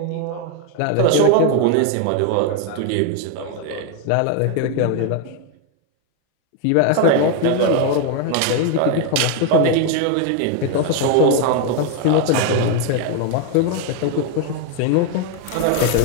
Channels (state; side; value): different; both; correlation 0.01